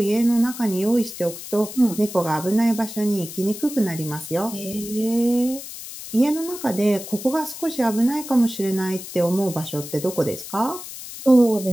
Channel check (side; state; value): left; noise; hiss, 12 dB below the sound